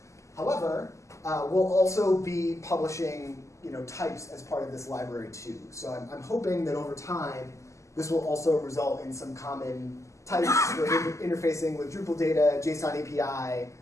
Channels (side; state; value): right; late; 0.15 ms